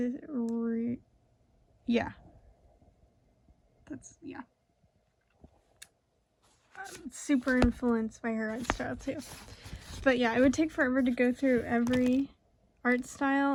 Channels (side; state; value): both; identical; correlation 1.00